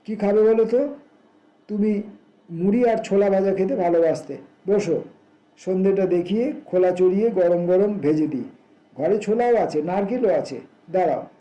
কি খাবে বলো তো? তুমি মুড়ি আর ছোলা ভাজা খেতে ভালোবাসতে। বসো, সন্ধেটা দেখিয়ে খোলা চড়িয়ে গরম গরম ভেজে দিই। ঘরে ছোলাও আছে, নারকেলও আছে। দাঁড়াও,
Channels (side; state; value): both; identical; correlation 1.00